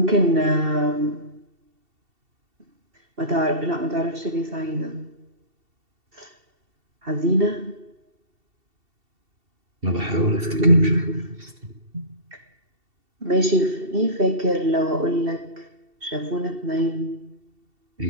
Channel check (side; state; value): left; late; 2.7 ms